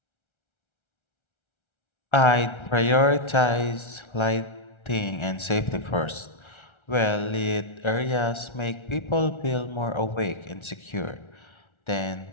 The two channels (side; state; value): right; late; 1.3 ms